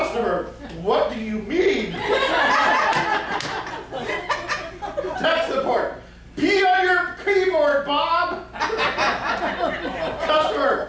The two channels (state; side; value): identical; both; correlation 1.00